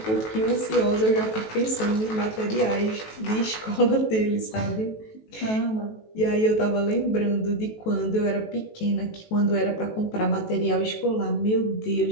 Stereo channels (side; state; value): right; late; 18 ms